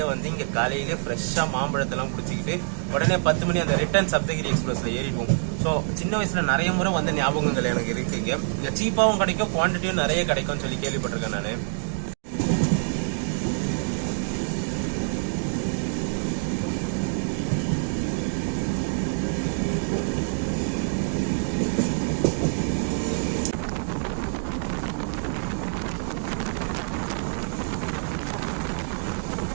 வந்து இங்கே காலையிலே ஃப்ரெஷ்ஷாக மாம்பழத்தெல்லாம் குடிச்சிக்கிட்டு உடனே 10 மணி அந்த ரிட்டர்ன் சப்தகிரி எக்ஸ்பிரஸில் ஏறிடுவோம். ஸோ சின்ன வயசில் நிறைய முறை வந்த ஞாபகங்கள் எனக்கு இருக்குங்க. இங்கே சீப்பாகவும் கிடைக்கும், குவான்டிட்டியும் நிறைய கிடைக்கும்னு சொல்லி கேள்விப்பட்டிருக்கேன் நான்.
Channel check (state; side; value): silent; left; digital silence